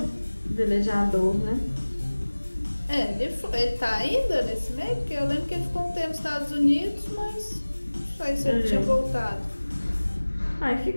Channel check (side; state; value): both; inverted; correlation -1.00